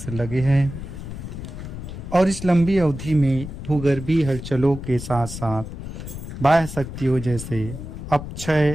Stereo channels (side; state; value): left; noise; rumble, 9 dB below the sound